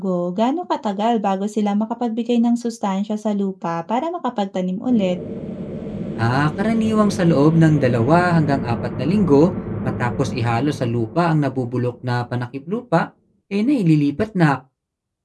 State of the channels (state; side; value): identical; both; correlation 1.00